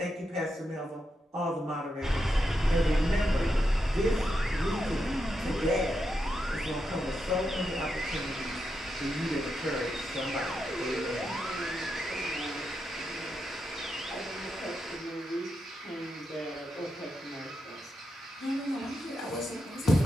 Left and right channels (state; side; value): normal; both; correlation 0.85